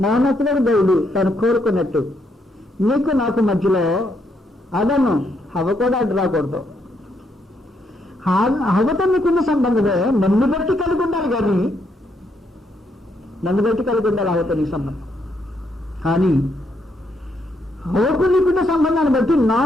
మౌనతుడు దేవుడు తను కోరుకున్నట్టు నీకు నాకు మధ్యలో అదను హవ కూడా అడ్డు రాకూడదు. హవతో నీకున్న సంబంధమే నన్ను బట్టి కలిగి ఉండాలి, కానీ నన్ను బట్టి కలిగి ఉండాలి హవతో నీకు సంబంధం. కానీ హవకు నీకున్న సంబంధాన్ని బట్టి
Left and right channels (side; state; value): both; normal; correlation 0.76